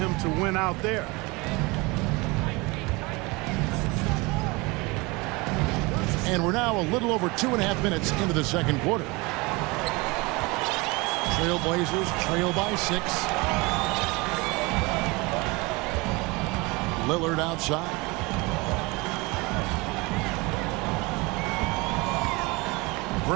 to win out there. And we're now a little over 2.5 minutes into the second quarter. Trailblazers trail by 6. Lillard outside.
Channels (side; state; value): left; quieter; 25.1 dB